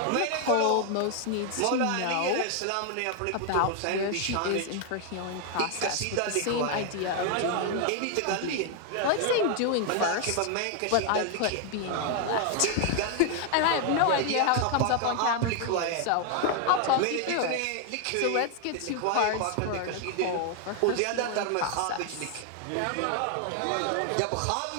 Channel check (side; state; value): both; different; correlation 0.00